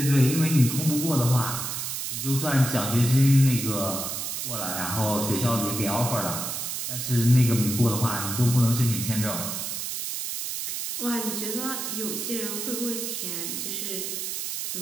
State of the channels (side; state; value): right; noise; hiss, 4 dB below the sound